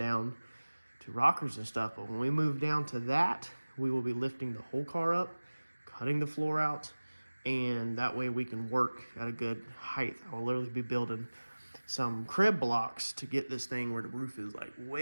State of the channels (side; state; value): both; inverted; correlation -1.00